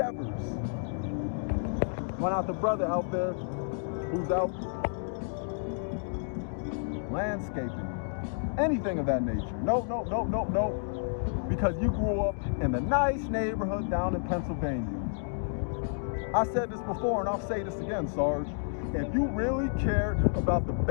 Why not the brother out there who's out landscaping? Anything of that nature. No. Because you grew up in the nice neighborhood down in Pennsylvania. I said this before and I'll say this again, Sarge. If you really cared about the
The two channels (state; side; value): silent; right; digital silence